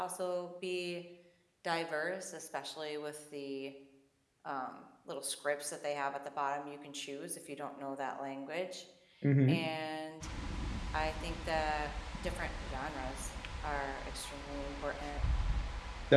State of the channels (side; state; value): both; identical; correlation 1.00